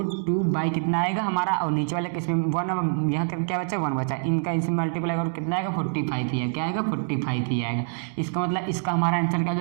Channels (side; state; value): left; silent; digital silence